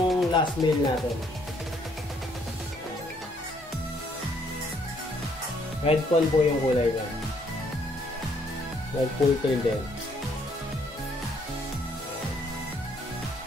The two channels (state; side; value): normal; both; correlation 0.67